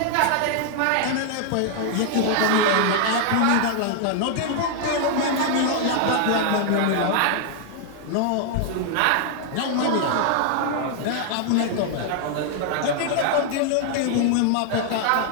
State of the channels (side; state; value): both; different; correlation 0.00